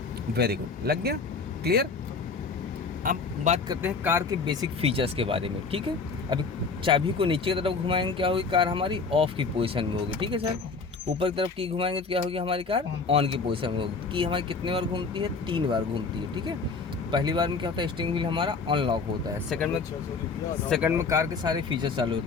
वेरी गुड, लग गया, क्लियर। अब बात करते हैं कार के बेसिक फीचर्स के बारे में। ठीक है, अभी चाबी को नीचे की तरफ घुमाएंगे, क्या होगी? कार हमारी ऑफ की पोजीशन में होगी। ठीक है सर, ऊपर की तरफ की घुमाएंगे तो क्या होगी? हमारी कार ऑन की पोजीशन में होगी। की हमारी कितने बार घूमती है? 3 बार घूमती है। ठीक है, पहली बार में क्या होता है? स्टीयरिंग व्हील हमारा अनलॉक होता है। सेकंड में कार के सारे फीचर्स चालू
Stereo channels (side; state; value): right; quieter; 4.6 dB